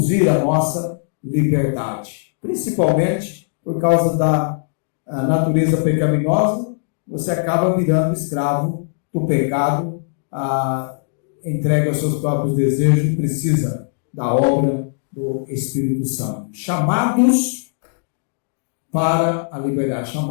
a nossa liberdade. Principalmente por causa da natureza pecaminosa, você acaba virando escravo do pecado, entrega aos seus próprios desejos e precisa da obra do Espírito Santo. Chamados para a liberdade,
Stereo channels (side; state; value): right; silent; digital silence